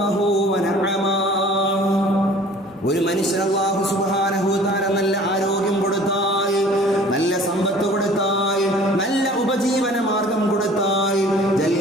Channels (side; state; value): both; normal; correlation 0.49